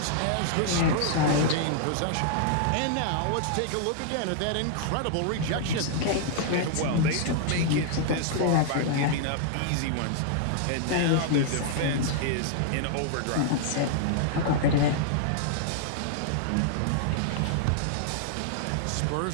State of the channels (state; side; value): different; both; correlation -0.01